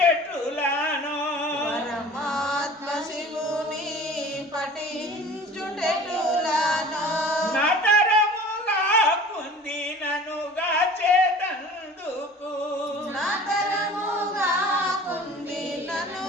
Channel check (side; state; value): both; normal; correlation 0.43